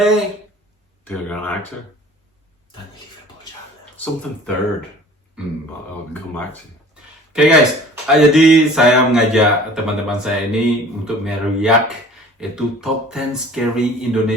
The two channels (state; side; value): normal; both; correlation 0.47